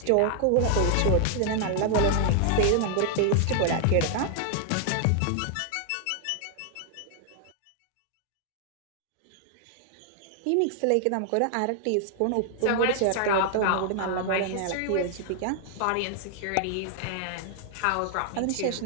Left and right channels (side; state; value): both; different; correlation 0.00